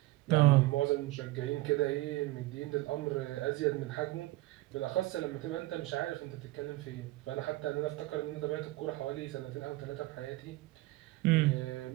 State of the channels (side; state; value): left; quieter; 18.9 dB